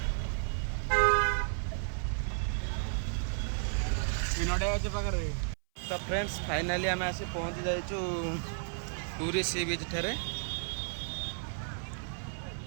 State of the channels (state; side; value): silent; left; 56 dB below the other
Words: ଏ ନଡ଼ିଆ ଗଛ ପାଖରେ तो फ्रेंड्स फाइनाली आम आसी पहुँची जाइचु पूरी सी बीच ठारे